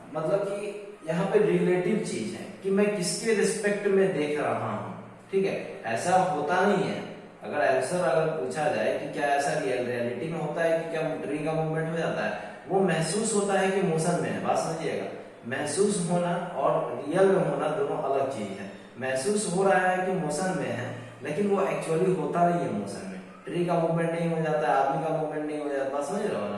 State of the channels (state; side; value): identical; both; correlation 1.00